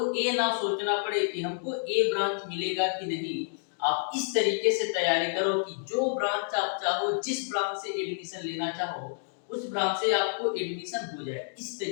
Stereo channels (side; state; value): right; silent; 58 dB below the other